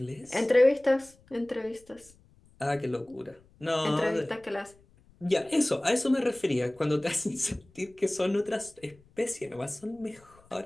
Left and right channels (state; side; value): noise; left; rumble, 29 dB below the sound